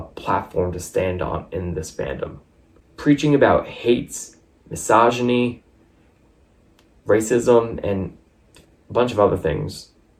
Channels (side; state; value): both; identical; correlation 1.00